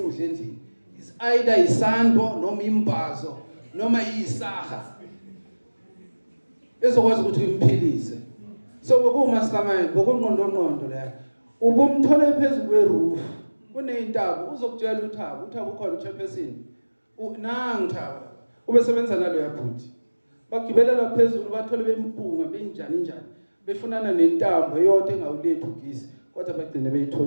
endlini. Is either isando noma imbazo noma isaha. Ezokwazi ukuthi imphilise. So bokumastermind, bokunqondo la. Ubumthola phezulu kweroof. Kuneyintaba uzokutshela uThabo ukhona uchairperson. Nangu Thaba. Ubesebenza nalo yaphuthi. Bagibela la phezulu bathole bempunga benjani. Befunana nentambo eyodwa engawulethu ugisi kodwa bagcine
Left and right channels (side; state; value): both; inverted; correlation -1.00